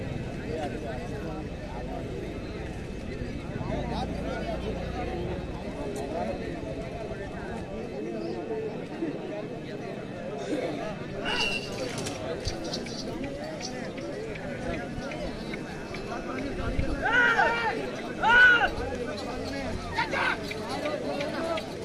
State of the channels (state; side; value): identical; both; correlation 1.00